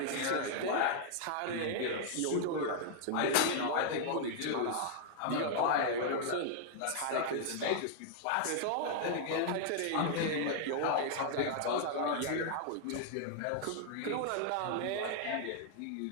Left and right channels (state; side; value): different; both; correlation -0.01